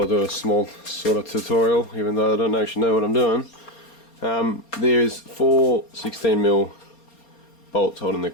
do a small sort of tutorial, even though I don't actually know what I'm doing. There's 4 16mm bolts holding the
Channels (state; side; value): late; right; 4.3 ms